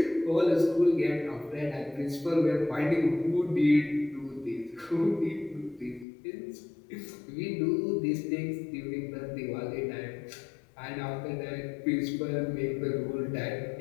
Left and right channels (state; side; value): drops out; right; at 6.1 s